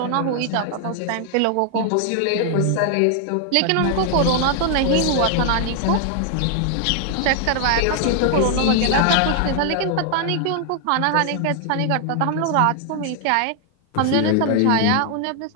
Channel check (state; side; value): different; both; correlation 0.00